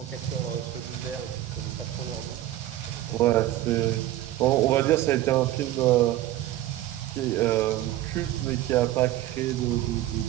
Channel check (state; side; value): quieter; left; 14.4 dB